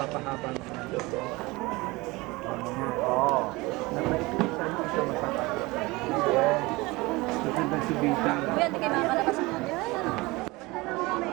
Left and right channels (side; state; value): left; quieter; 22.6 dB